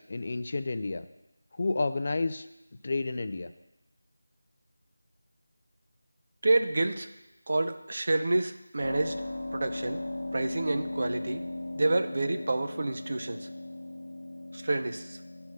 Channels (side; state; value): both; inverted; correlation -0.96